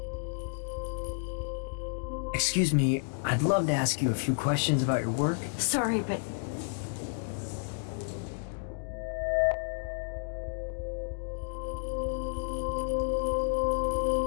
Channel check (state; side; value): silent; right; digital silence